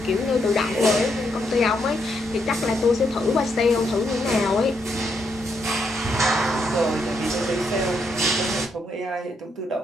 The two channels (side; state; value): both; normal; correlation 0.77